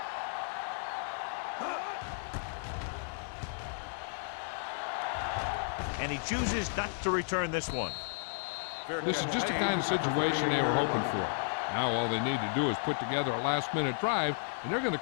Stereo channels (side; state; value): right; silent; digital silence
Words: And he chooses not to return this one. This is just the kind of situation they were hoping for. Now all they need to do is put together a last-minute drive, and they're going to